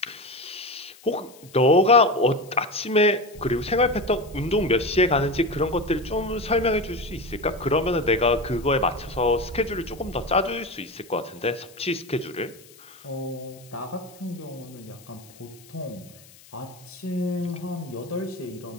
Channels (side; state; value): left; noise; hiss, 24 dB below the sound